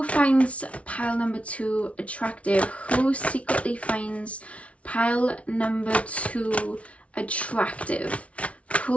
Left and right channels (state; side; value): late; right; 0.063 ms